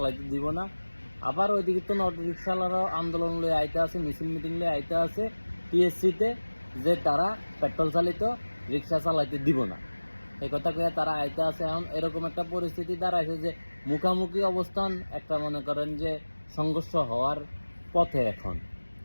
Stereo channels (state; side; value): inverted; both; correlation -1.00